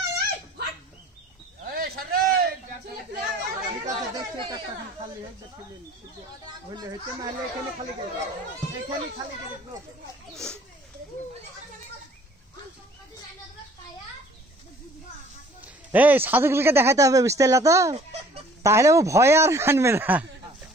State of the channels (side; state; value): both; normal; correlation 0.54